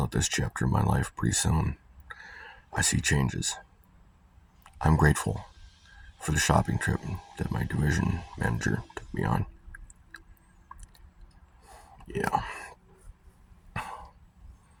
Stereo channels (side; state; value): both; identical; correlation 1.00